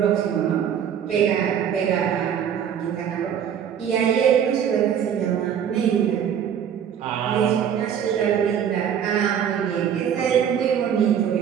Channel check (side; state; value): left; quieter; 8.8 dB